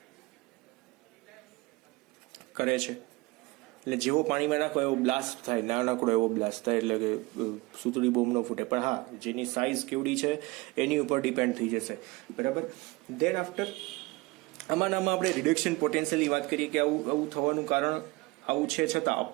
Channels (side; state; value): left; quieter; 23.1 dB